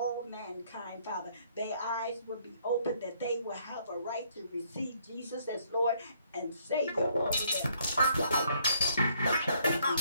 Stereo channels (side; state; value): both; inverted; correlation -0.68